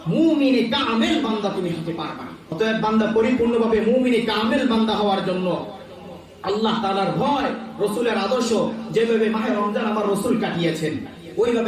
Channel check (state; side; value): identical; both; correlation 1.00